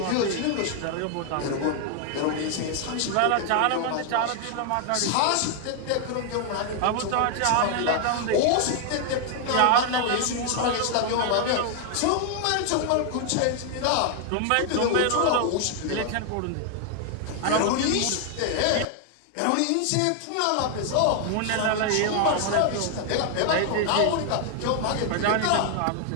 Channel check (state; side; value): different; both; correlation 0.00